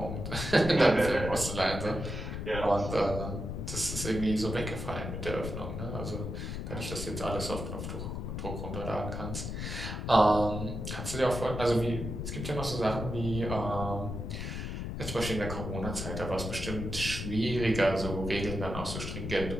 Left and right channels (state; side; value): noise; left; rumble, 5 dB below the sound